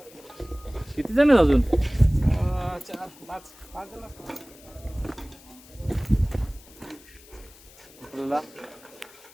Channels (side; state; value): left; noise; hiss, 23 dB below the sound